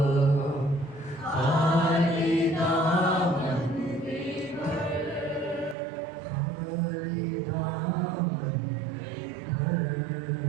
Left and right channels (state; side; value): drops out; left; at 5.8 s